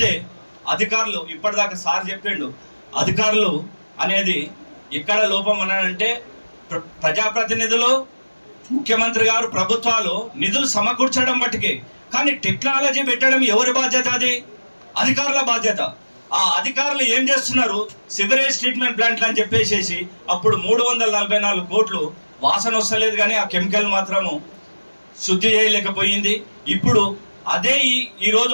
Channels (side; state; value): both; inverted; correlation -1.00